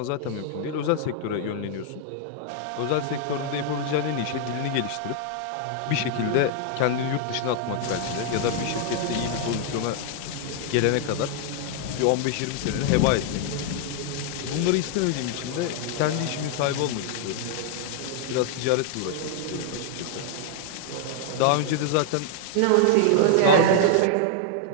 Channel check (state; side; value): different; both; correlation 0.00